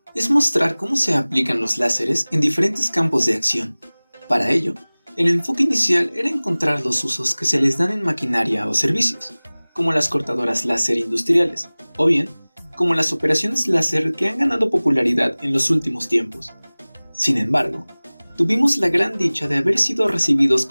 es mostrar cómo se aplican los láseres en diferentes campos de acción. Para ello, el enfoque inicial era encontrar los usos que se les dan en maquinaria o servicios, como las cortadoras láser industriales, o bien, como las operaciones láser que han ganado popularidad en los últimos tiempos. Sin embargo, tuvimos la gran dicha de haber sido recibidos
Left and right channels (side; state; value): both; inverted; correlation -1.00